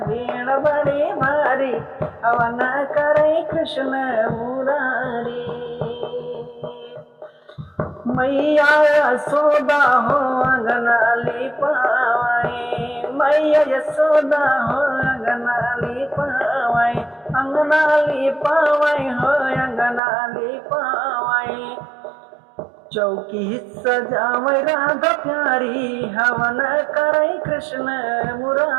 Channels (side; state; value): left; drops out; at 20.0 s